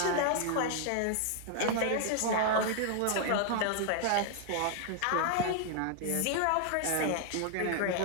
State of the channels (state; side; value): different; both; correlation 0.00